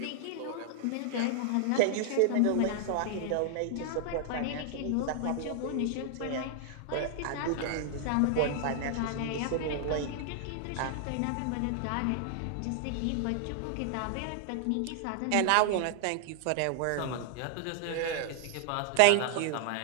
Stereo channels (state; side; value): different; both; correlation 0.00